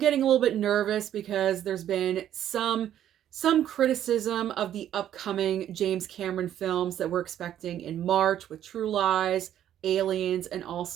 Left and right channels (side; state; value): left; quieter; 11.0 dB